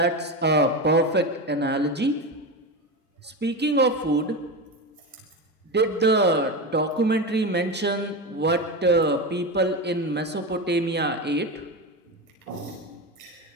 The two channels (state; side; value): normal; both; correlation 0.20